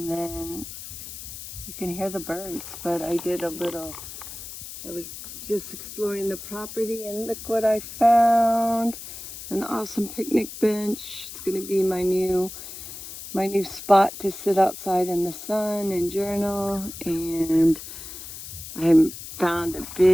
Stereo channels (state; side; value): noise; left; hiss, 11 dB below the sound